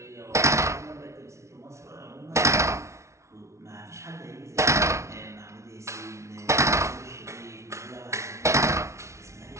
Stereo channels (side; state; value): left; late; 0.14 ms